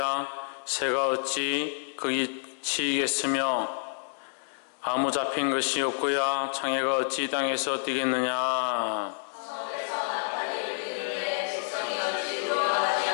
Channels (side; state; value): right; silent; digital silence